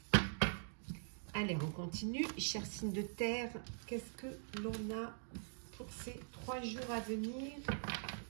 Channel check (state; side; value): silent; left; digital silence